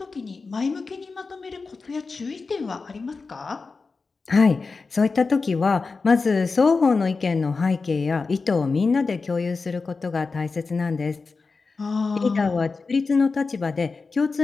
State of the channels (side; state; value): right; quieter; 4.3 dB